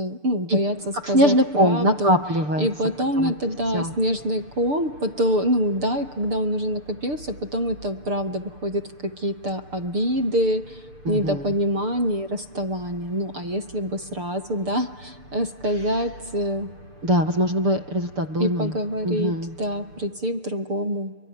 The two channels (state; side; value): late; left; 6.8 ms